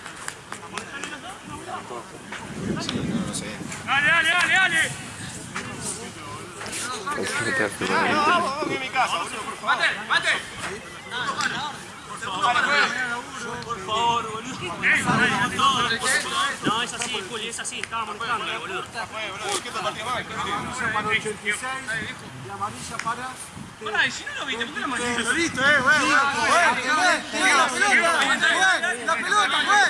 Dale. Mate. Por favor, boludo. No, es así, Juli, es así. Estaba molestando, boludo. Para 86 y amarilla para... Pará, y si no lo viste, ¿por qué lo mandaste? Lo viste, la pelota,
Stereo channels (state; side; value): identical; both; correlation 1.00